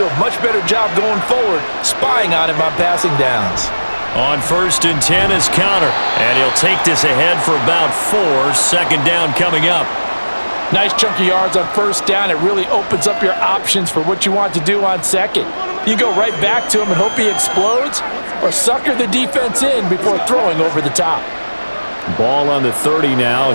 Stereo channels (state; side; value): inverted; both; correlation -1.00